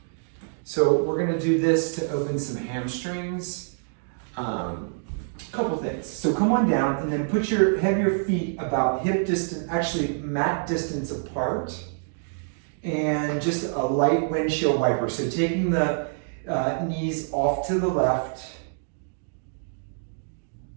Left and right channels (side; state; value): left; silent; digital silence